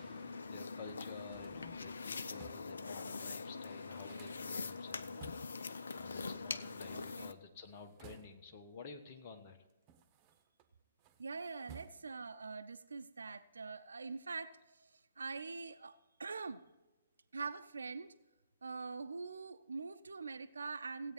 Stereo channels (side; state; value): both; inverted; correlation -0.82